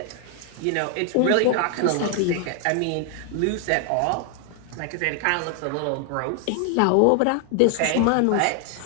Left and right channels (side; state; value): both; different; correlation 0.00